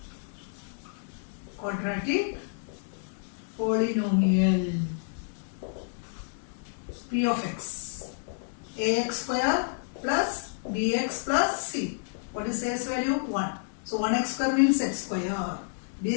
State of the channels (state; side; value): silent; right; digital silence